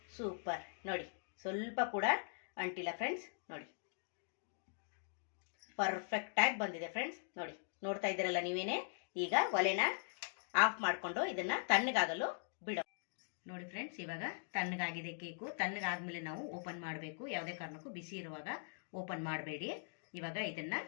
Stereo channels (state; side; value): silent; right; digital silence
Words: ಸೂಪರ್. ನೋಡಿ, ಸ್ವಲ್ಪ ಕೂಡ ಅಂಟಿಲ್ಲ ಫ್ರೆಂಡ್ಸ್. ನೋಡಿ, ಪರ್ಫೆಕ್ಟ್ ಆಗಿ ಬಂದಿದೆ ಫ್ರೆಂಡ್ಸ್. ನೋಡಿ, ನೋಡ್ತಾ ಇದ್ದೀರಲ್ಲ ನೀವೇನೆ. ಈಗ ಒಲೆನ ಆಫ್ ಮಾಡಿಕೊಂಡು ಇದನ್ನ ತಣ್ಣಗಾಗಲು ಬಿಡೋ. ನೋಡಿ ಫ್ರೆಂಡ್ಸ್, ಇವಾಗ ತಣ್ಣಗಾಗಿದೆ ಕೇಕು. ತಣ್ಣಗಾದ್ಮೇಲೆ ನಾವು ಓಪನ್ ಮಾಡಬೇಕು. ಯಾವುದೇ ಕಾರಣಕ್ಕೂ ಬಿಸಿ ಇರುವಾಗ ಓಪನ್ ಮಾಡಬೇಡಿ. ಇವಾಗ ಇದನ್ನ